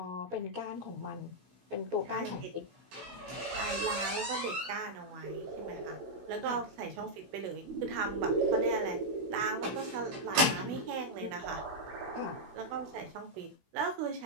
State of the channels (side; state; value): left; late; 16 ms